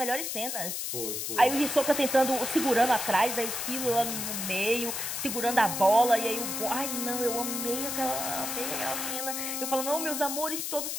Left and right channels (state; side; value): noise; left; hiss, 3 dB below the sound